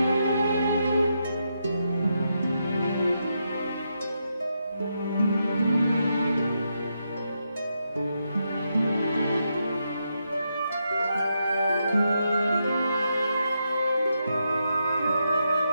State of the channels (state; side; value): inverted; both; correlation -0.82